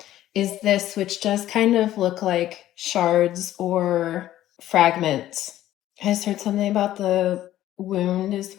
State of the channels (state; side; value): quieter; right; 13.4 dB